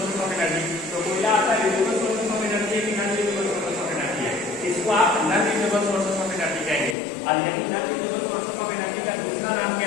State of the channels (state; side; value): drops out; right; at 7.0 s